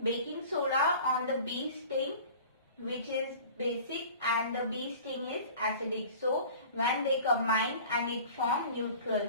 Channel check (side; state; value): both; inverted; correlation -0.43